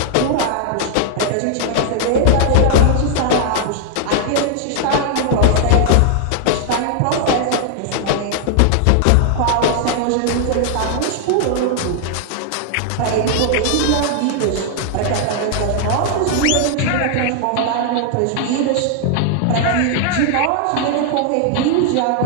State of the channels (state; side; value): different; both; correlation 0.00